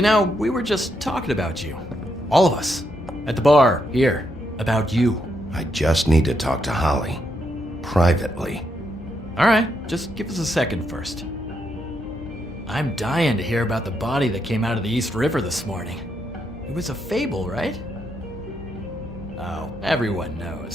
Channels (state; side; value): normal; both; correlation 0.79